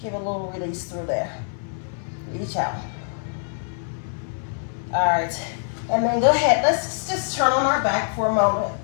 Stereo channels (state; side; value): silent; right; 59 dB below the other